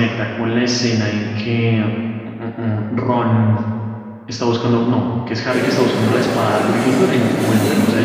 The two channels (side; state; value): both; identical; correlation 1.00